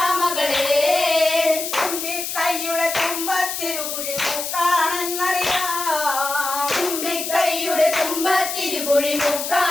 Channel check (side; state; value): left; noise; hiss, 4 dB below the sound